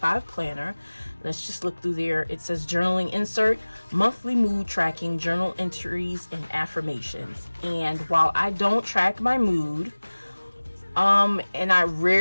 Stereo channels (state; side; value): inverted; both; correlation -1.00